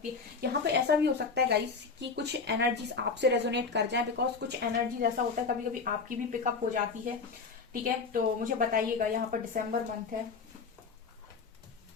है। यहाँ पे ऐसा भी हो सकता है गाइस कि कुछ एनर्जीज आपसे रेजोनेट कर जाए, बिकॉज कुछ एनर्जीज ऐसा होता है कभी कभी आपकी भी पिकअप हो जाती है, ठीक है। तो मुझे बताइएगा। यहाँ पर दिसंबर मंथ है,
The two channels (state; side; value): quieter; right; 4.9 dB